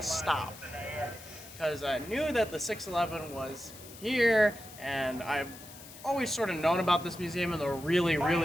stop. Because I knew that the 611 was here, and I've always sort of known about this museum and the really,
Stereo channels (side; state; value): left; noise; hiss, 17 dB below the sound